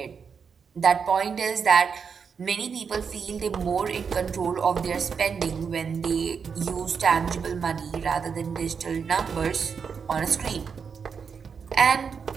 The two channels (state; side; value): quieter; left; 6.2 dB